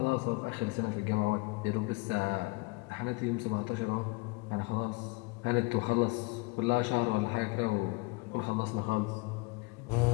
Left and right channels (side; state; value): right; quieter; 26.3 dB